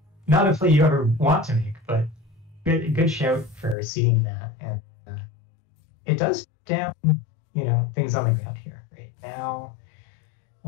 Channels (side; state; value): right; drops out; at 3.8 s